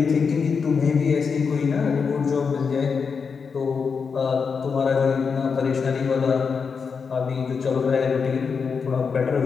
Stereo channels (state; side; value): quieter; right; 5.7 dB